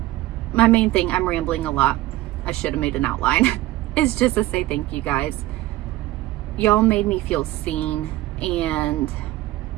main thing, I'm rambling a lot. I should have made an outline. Is just to say thank you guys. Y'all made me feel seen and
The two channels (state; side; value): quieter; left; 16.8 dB